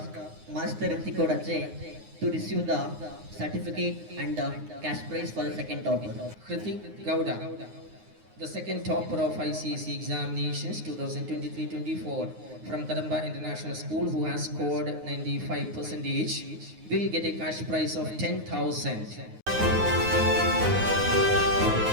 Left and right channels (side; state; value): left; late; 9.6 ms